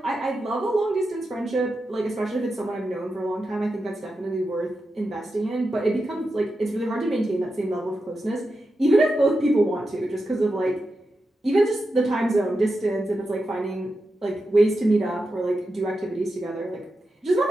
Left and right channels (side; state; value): both; normal; correlation 0.89